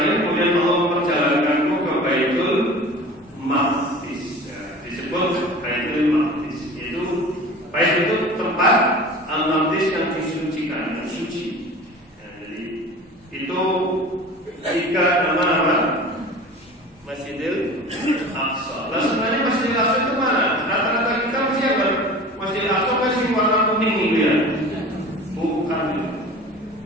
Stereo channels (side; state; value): both; normal; correlation 0.39